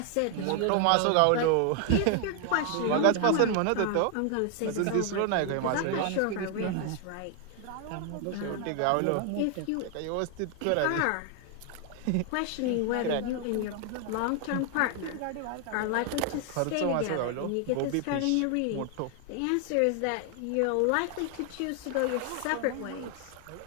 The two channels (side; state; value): both; different; correlation 0.00